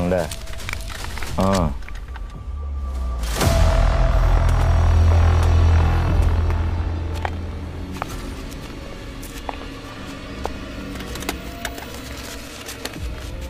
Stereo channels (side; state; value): both; identical; correlation 1.00